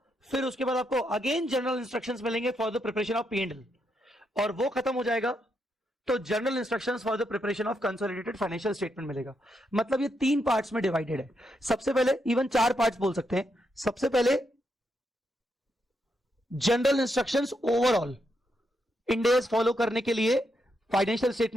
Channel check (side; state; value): both; normal; correlation 0.80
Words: फिर उसके बाद आपको अगेन जनरल इंस्ट्रक्शंस मिलेंगे for the preparation of P and L, और वो खत्म हो जाएगा तो general instructions for the preparation of consolidated financial statement मिलेगा. मतलब ये 3 पार्ट्स में डिवाइडेड है. सबसे पहले इवन 4 पार्ट्स बोल सकते हैं. सबसे पहले general instructions overall end S follow करने के लिए फाइनेंशियल